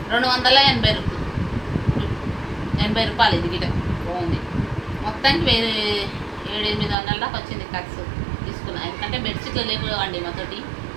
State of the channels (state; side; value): drops out; left; at 7.0 s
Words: 280 రూపాయలు, ఇది గిట బాగుంది. మొత్తానికి 700-800 దాకా వచ్చింది ఖర్చు తీసుకున్నా. ఎందుకంటే బెడ్షీట్లు లేకపోవండి, మాతోటి